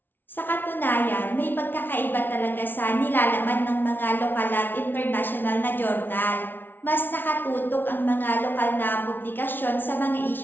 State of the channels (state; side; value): late; right; 0.097 ms